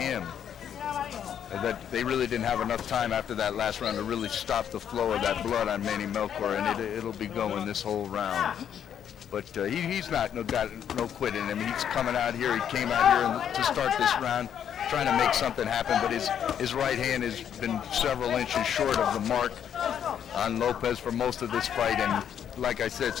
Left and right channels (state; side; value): quieter; right; 9.0 dB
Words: That they really didn't have enough time after that last round to really stop the flow of that blood on Manny Melchor, and it'll be going this whole round. But he's got no quit in him. He's coming out here. He came out here to start this round trying to make something happen, but his right hand has been several inches short of the mark on Lopez for most of this fight. And like I said,